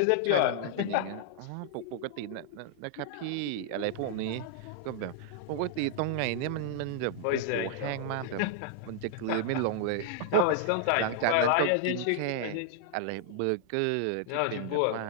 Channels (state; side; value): different; both; correlation -0.01